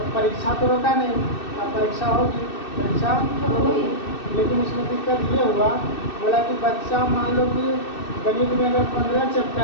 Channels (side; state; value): right; late; 2.6 ms